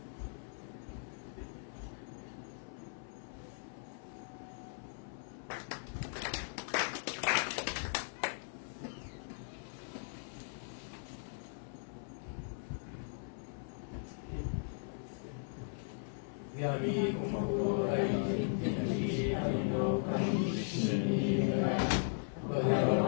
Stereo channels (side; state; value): right; silent; 52 dB below the other